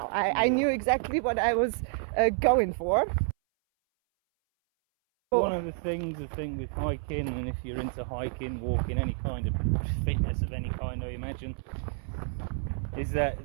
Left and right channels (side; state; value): left; silent; 58 dB below the other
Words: I knew exactly what I was going for. One of the things I think with hiking, and if you're into hiking, walking, any kind of fitness of any kind, I imagine, is that